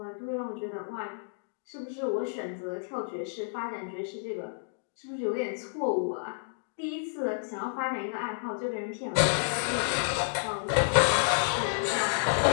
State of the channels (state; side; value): silent; right; digital silence